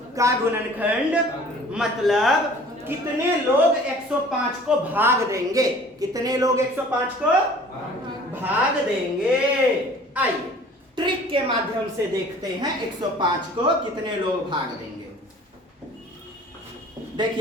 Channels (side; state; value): both; normal; correlation 0.49